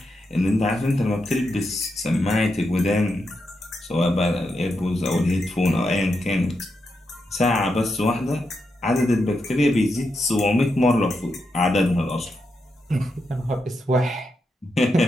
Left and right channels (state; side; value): normal; both; correlation 0.85